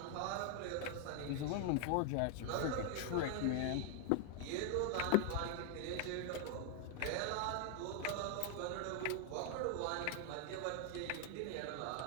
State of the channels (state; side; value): different; both; correlation 0.00